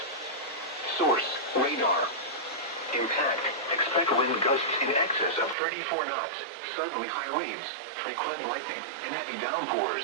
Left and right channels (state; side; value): drops out; left; at 5.6 s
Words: Source, radar. Impact, expect wind gusts in excess of 34 knots, suddenly high waves, frequent lightning, and heavy